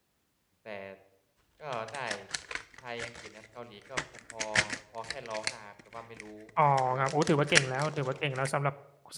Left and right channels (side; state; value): both; identical; correlation 1.00